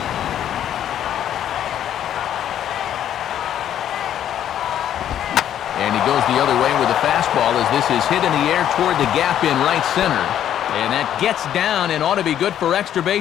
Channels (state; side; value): quieter; right; 10.6 dB